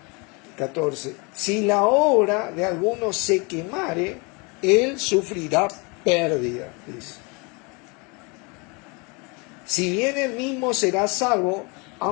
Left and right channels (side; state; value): right; quieter; 30.2 dB